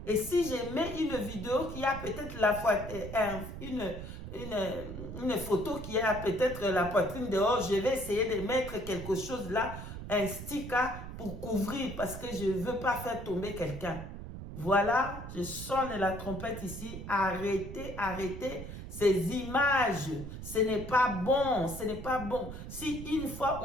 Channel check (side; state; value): right; noise; rumble, 9 dB below the sound